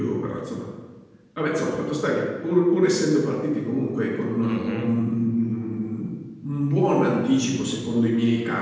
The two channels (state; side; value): identical; both; correlation 1.00